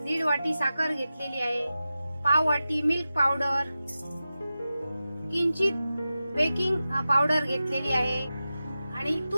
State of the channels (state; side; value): inverted; both; correlation -0.94